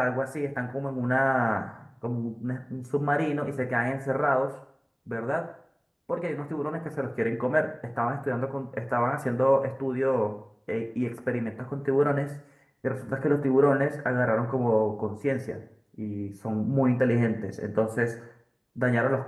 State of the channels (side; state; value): both; identical; correlation 1.00